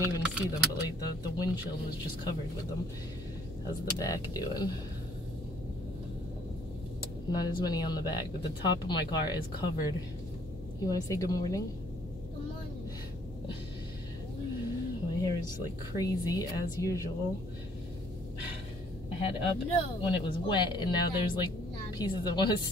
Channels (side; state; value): both; normal; correlation 0.61